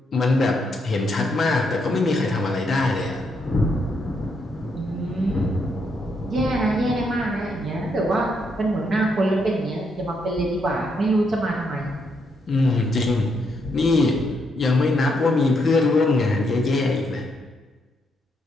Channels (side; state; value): both; normal; correlation 0.77